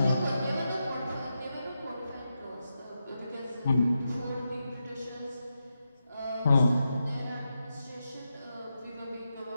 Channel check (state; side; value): inverted; both; correlation -0.87